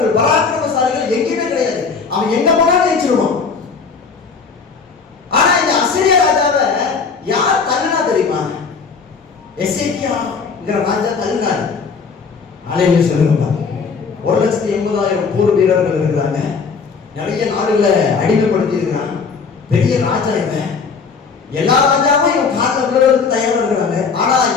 பராக்கிரமசாலிகள் எங்கேயுமே கிடையாது. அவன் எங்க போனாலும் ஜெயிச்சிருவான். ஆனா இந்த அசிரிய ராஜாவை யார் தள்ளினா தெரியுமா? எசேக்கியாங்கிற ராஜா தள்ளினார். அலையிலே சொல்லுங்க, 1,80,000 போர் வீரர்கள் இருக்கிறாங்க. நிறைய நாடுகளை அடிமைப்படுத்தி இருக்கிறான். பெரிய ராஜா இவன். எல்லா ராஜாவும் இவன் காலில் விழுறதுக்கு தயாரா இருக்கிறாங்க. ஆனா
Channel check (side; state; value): right; quieter; 5.2 dB